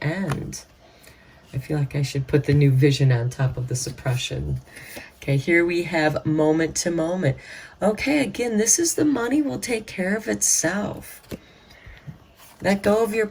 end. I feel like I should put the new vision on top of the suppression. Okay, here we have moment to moment. Okay, again, this is the money will take care of itself. Let go of your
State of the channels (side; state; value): both; identical; correlation 1.00